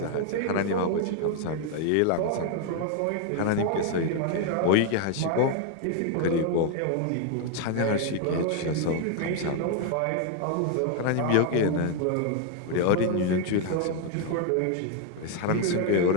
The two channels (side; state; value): both; different; correlation 0.00